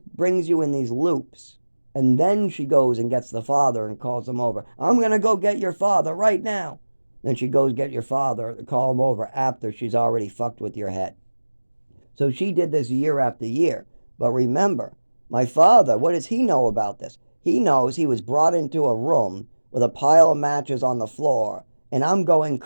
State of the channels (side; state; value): both; inverted; correlation -1.00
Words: brings you in these loops. And then she goes and gets the father and calls him over. I'm going to go get your father right now. Then she goes get your father, call him over after she's already fucked with your head. So she did this year after year. But remember, my father, what does he know about this? He knows he was brought into a room with a pile of matches on the floor. And I'm going